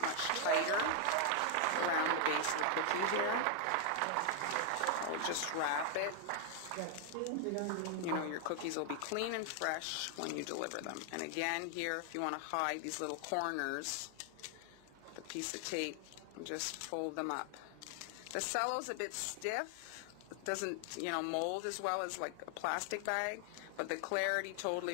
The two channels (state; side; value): different; both; correlation 0.00